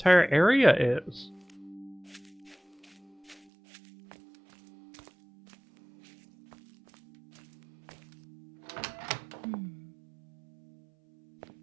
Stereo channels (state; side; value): drops out; left; at 3.5 s